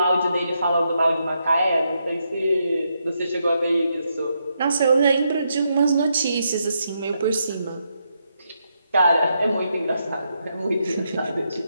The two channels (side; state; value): both; inverted; correlation -0.80